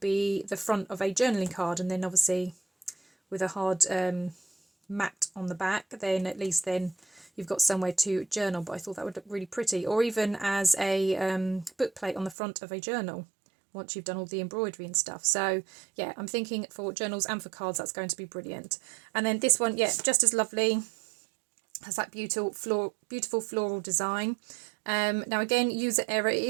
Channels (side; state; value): left; drops out; at 12.4 s